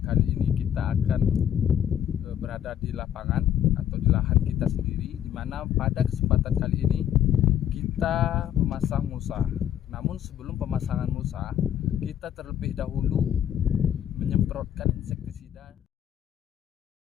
kali ini kita akan berada di lapangan atau di lahan kita sendiri, di mana pada kesempatan kali ini kita memasang mulsa. Namun sebelum pemasangan mulsa, kita terlebih dahulu menyemprotkan insektisida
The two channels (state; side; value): quieter; right; 10.2 dB